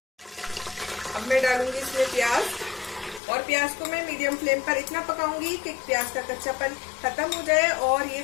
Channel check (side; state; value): right; drops out; at 3.2 s